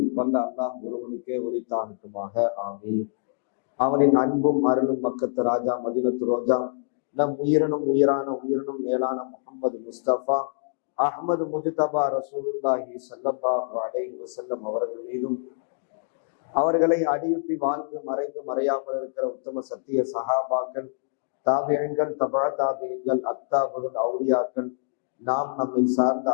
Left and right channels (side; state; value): right; silent; digital silence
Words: வல்ல அல்லாஹ் ஒருவனுக்கே உரித்தாகட்டுமாக. ஆமீன். அவனின் அன்பும் அருளும் மக்கத்து ராஜா மதீனத்து ரோஜா நம் உயிரினும் மேலான முஹம்மது முஸ்தபா அஹ்மது முஜ்தபா ரசூலுல்லாஹி ஸல்லல்லாஹு அலைஹி வஸல்லம் அவர்கள் மீதும், அவர்களை அடியுட்டி வாழ்ந்து மறைந்து மறையாமல் இருக்கிற உத்தம சத்திய சஹாபாக்கள், தாபியங்கள், தபா தாபியங்கள், அக்தாபுகள், அவுலியாக்கள், நாம் நம்மை சார்ந்த